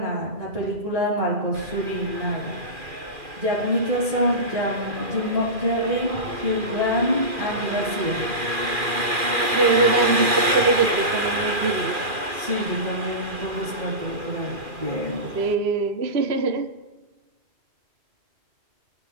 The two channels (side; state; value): left; late; 2.4 ms